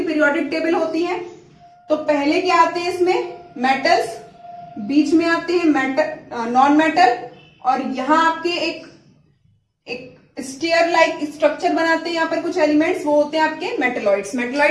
पीरियोडिक टेबल होती है। तो पहले क्या आते हैं इसमें, मेटल्स, बीच में आते हैं मेटल, नॉन मेटल, और यहां आपके एक स्टेयर लाइक स्ट्रक्चर बनाते हैं यहाँ पर कुछ एलिमेंट्स, वो होते हैं आपके मेटलॉइड्स।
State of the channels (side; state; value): both; identical; correlation 1.00